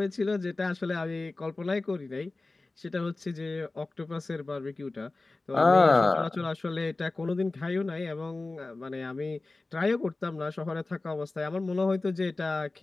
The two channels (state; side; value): quieter; right; 3.3 dB